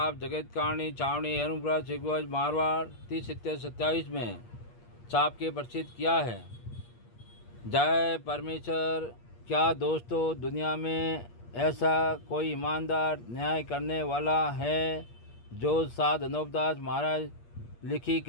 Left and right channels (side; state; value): right; late; 8.5 ms